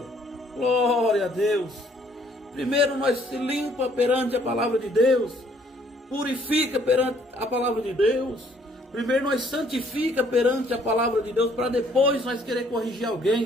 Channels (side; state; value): both; normal; correlation 0.63